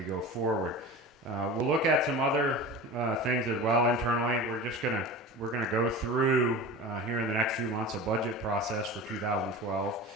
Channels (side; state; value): both; normal; correlation 0.32